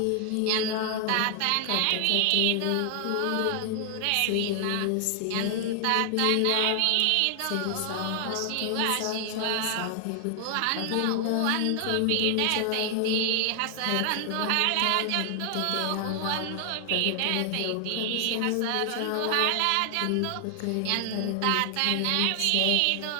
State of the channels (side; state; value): both; different; correlation 0.00